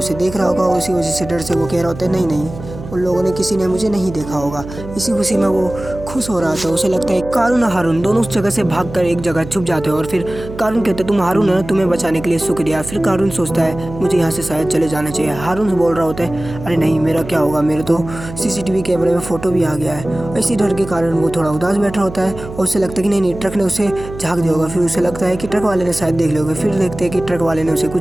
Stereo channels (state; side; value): noise; right; hum, 12 dB below the sound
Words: देख रहा होगा। उसी वजह से डर से वो कह रहा होता है नहीं, उन लोगों ने किसी ने मुझे नहीं देखा होगा। इसी खुशी में वो खुश हो रहा था। उसे लगता है कारून और हारून दोनों उस जगह से भागकर एक जगह छुप जाते हैं। और फिर कारून कहते हैं तुम हारून है, तुम्हें बचाने के लिए शुक्रिया। फिर कारून सोचता है मुझे यहाँ से शायद चले जाना चाहिए। हारून से बोल रहा होता है अरे नहीं, मेरा क्या होगा, मेरे तो CCTV कैमरे में फ़ोटो भी आ गया है। इसी डर के कारण वो थोड़ा उदास बैठा होता है और उसे लगता है कि नहीं, ट्रक ने उसे झाँक दिया होगा। फिर उसे लगता है कि ट्रक वाले ने शायद देख लिया होगा। फिर देखते हैं कि ट्रक वाले ने उसे